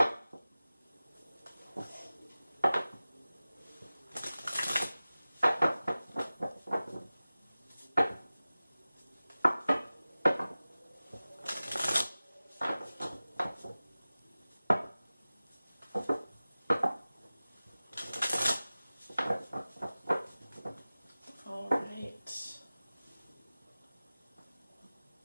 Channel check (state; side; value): inverted; both; correlation -0.97